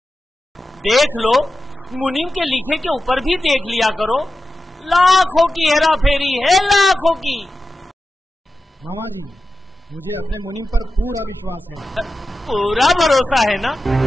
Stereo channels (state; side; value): normal; both; correlation 0.92